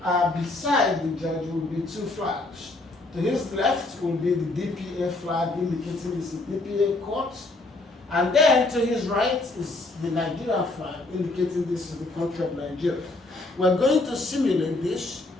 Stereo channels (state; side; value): quieter; right; 3.0 dB